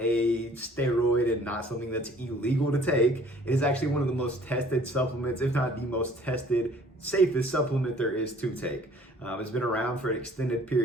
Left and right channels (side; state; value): both; normal; correlation 0.54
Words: steroid and not something that's illegal to take. It is actually one of the most tested supplements, if not the most tested, safest supplement there is to take. It's been around for an extended